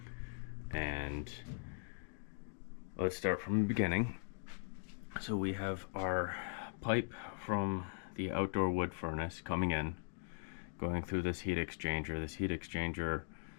And let's start from the beginning. So we have our pipe from the outdoor wood furnace coming in, going through this heat exchanger. This heat exchanger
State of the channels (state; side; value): silent; right; digital silence